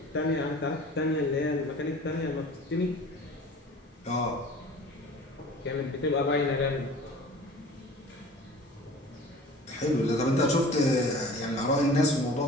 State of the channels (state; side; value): normal; both; correlation 0.43